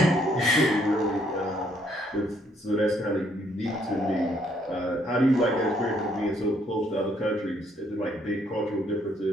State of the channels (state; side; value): normal; both; correlation 0.69